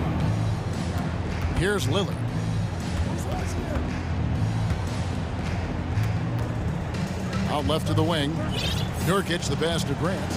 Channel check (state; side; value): identical; both; correlation 1.00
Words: Here's Lillard. Out left to the wing. Nurkic the pass to Grant.